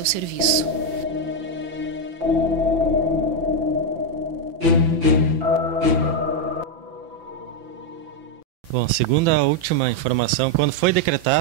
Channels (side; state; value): left; late; 5.9 ms